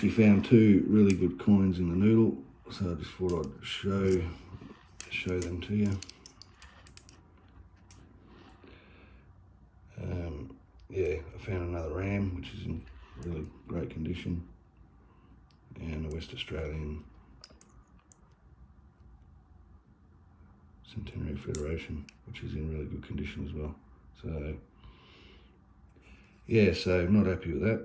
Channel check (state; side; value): identical; both; correlation 1.00